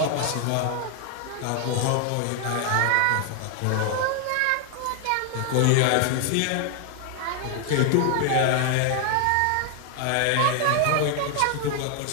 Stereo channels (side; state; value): both; different; correlation 0.00